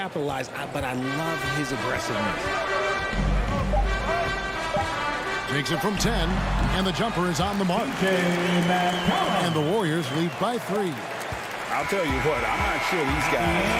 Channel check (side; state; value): both; identical; correlation 1.00